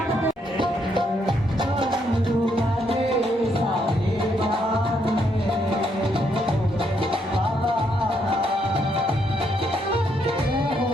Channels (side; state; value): both; normal; correlation 0.74